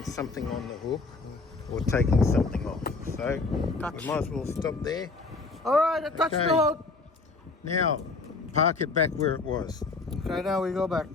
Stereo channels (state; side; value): quieter; right; 3.8 dB